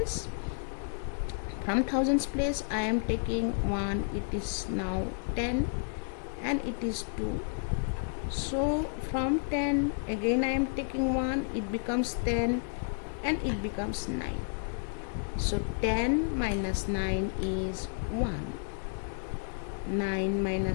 From thousands place I am taking 1, it is now 10 and it is 2. So from 10 again I am taking 1, it becomes 10 and it becomes 9. So 10 minus 9 is 1. 9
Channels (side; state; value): right; silent; 57 dB below the other